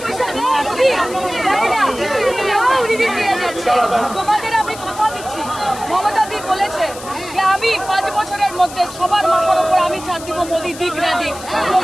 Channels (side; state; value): left; noise; hiss, 15 dB below the sound